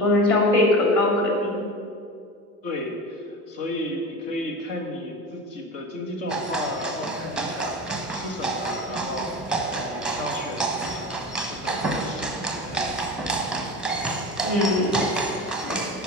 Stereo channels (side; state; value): both; normal; correlation 0.30